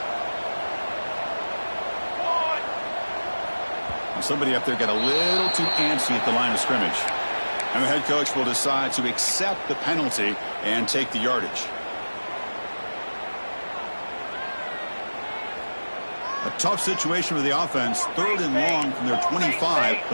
Somebody up there got a little too antsy at the line of scrimmage. And the head coach will decide to accept the penalty and take the yardage. A tough situation for the offense. 3rd and long from their 25.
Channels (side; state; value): both; inverted; correlation -1.00